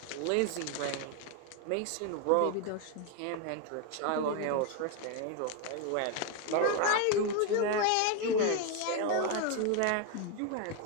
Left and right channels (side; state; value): both; different; correlation 0.01